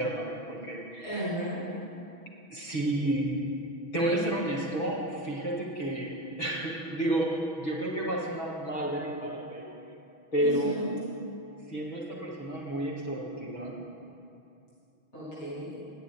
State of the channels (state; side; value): late; right; 6.2 ms